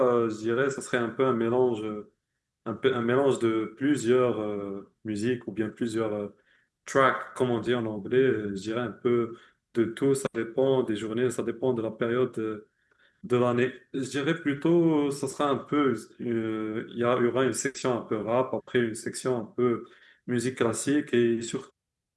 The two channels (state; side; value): identical; both; correlation 1.00